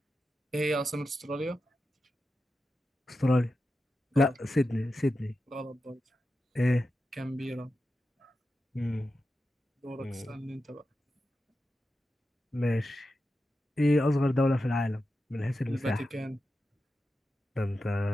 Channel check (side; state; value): both; normal; correlation 0.90